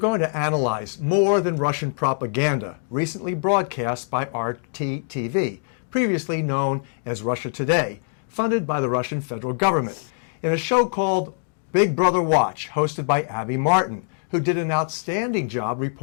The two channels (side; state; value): right; silent; digital silence